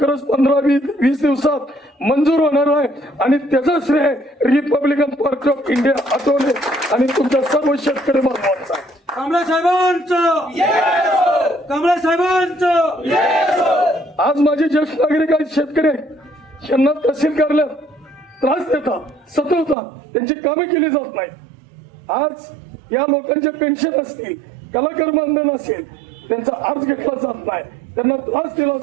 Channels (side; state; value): left; drops out; at 19.8 s